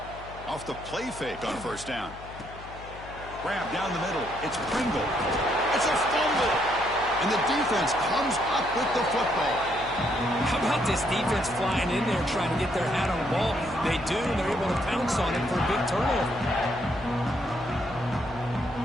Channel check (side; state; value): left; noise; hum, 16 dB below the sound